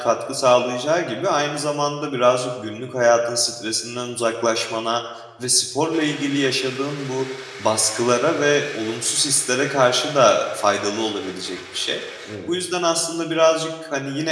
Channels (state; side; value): identical; both; correlation 1.00